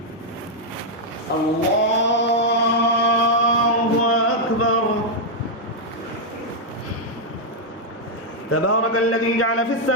الله أكبر تبارك الذي جعل في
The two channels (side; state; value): both; normal; correlation -0.03